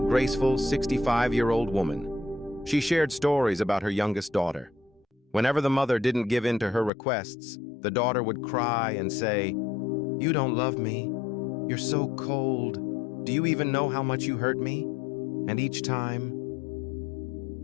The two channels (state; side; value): drops out; right; at 6.9 s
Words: graceful 65-year-old woman. She shared stories about her youngest daughter. Whenever the mother didn't give in to her requests, the daughter would cry and say, "You don't love me. You're so cold. Do you even know how much you hurt me?" And each time,